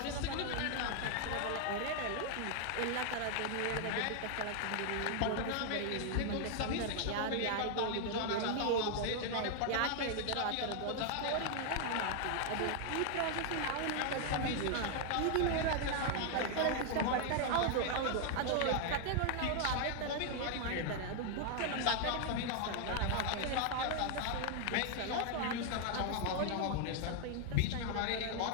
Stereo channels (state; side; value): different; both; correlation 0.00